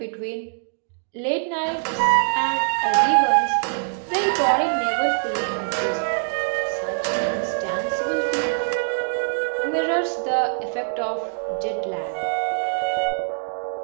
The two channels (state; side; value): silent; left; digital silence